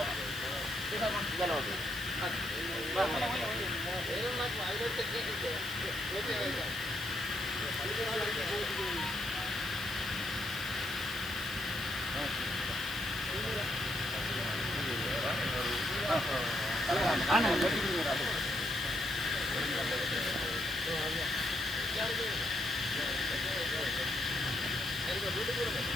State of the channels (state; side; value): noise; left; hiss, 13 dB below the sound